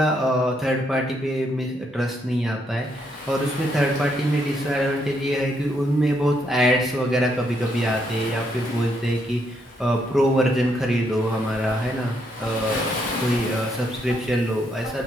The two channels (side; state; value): both; normal; correlation 0.75